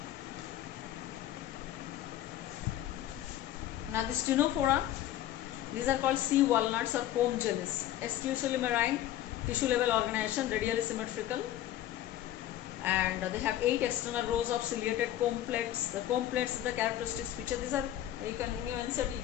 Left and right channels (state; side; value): quieter; right; 12.9 dB